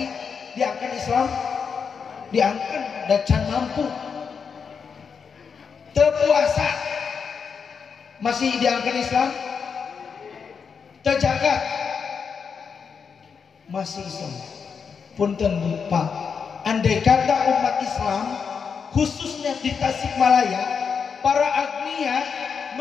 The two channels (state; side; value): quieter; right; 6.1 dB